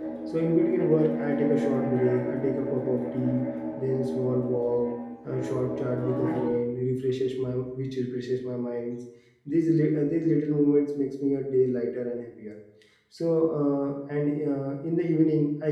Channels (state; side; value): identical; both; correlation 1.00